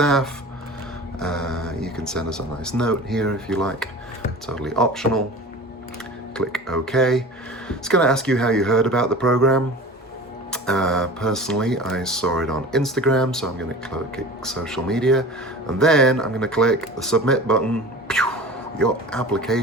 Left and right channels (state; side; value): normal; both; correlation 0.37